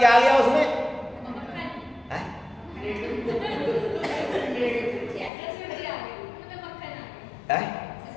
आ गया उसमें?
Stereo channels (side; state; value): right; drops out; at 5.3 s